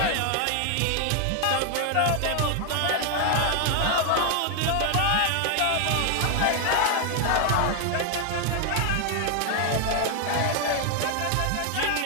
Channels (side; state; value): both; different; correlation 0.00